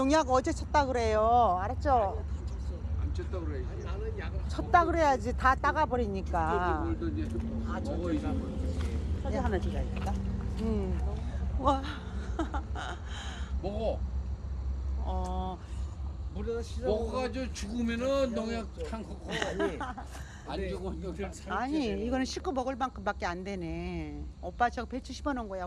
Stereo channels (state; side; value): identical; both; correlation 1.00